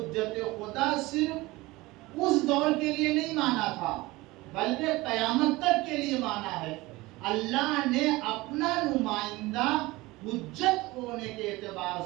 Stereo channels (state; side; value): quieter; left; 20.8 dB